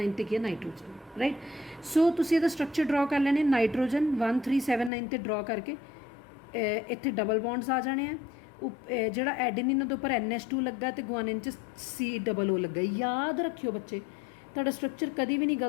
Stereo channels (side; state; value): right; drops out; at 4.9 s